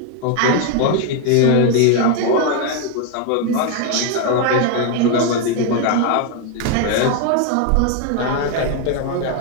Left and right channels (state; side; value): different; both; correlation 0.01